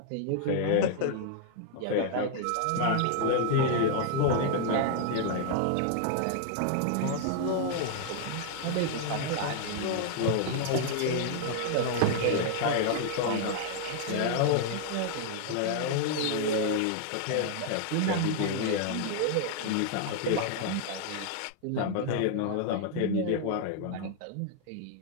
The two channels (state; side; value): different; both; correlation 0.00